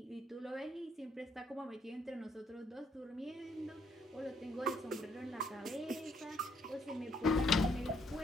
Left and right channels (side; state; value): both; normal; correlation 0.70